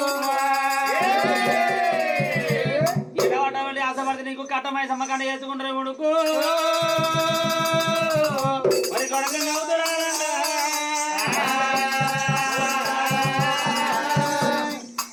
అటువంటి ఆశపడితే నీకు కట్టమై సమ్మకండ వేసుకుంటారు కొడుకు. మరి కొడుకు అవుతురా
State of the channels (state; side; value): identical; both; correlation 1.00